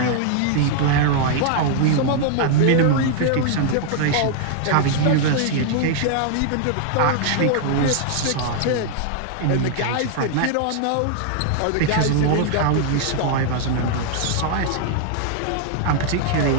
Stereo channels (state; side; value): different; both; correlation -0.01